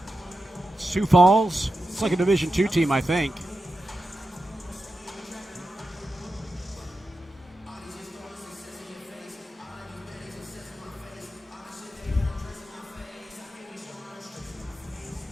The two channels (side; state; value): both; normal; correlation 0.90